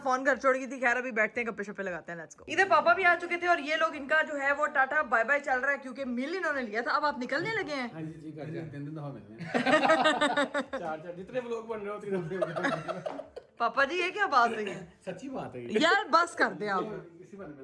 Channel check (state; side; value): identical; both; correlation 1.00